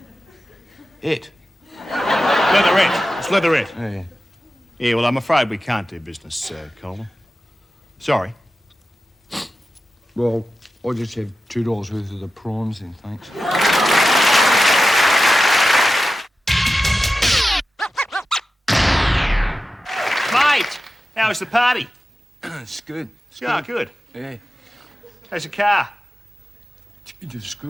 Leatherette. It's leatherette. Yeah. Yeah, well, I'm afraid we can't do business, Colin. Sorry. Well, I'll just have $2 worth of the prawns then, thanks. Mate, how was the party? It's good. Yeah, good. Yeah. How's the car? It's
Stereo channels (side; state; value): both; normal; correlation 0.93